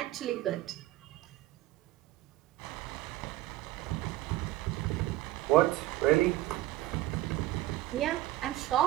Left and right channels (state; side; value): quieter; left; 16.1 dB